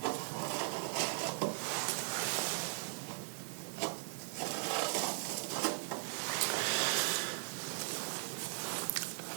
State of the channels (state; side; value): silent; left; digital silence